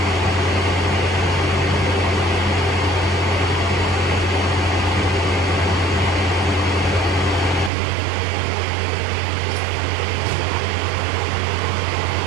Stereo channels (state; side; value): drops out; left; at 7.7 s